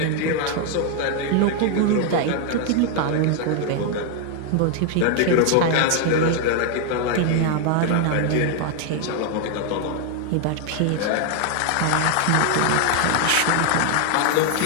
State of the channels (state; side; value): different; both; correlation 0.00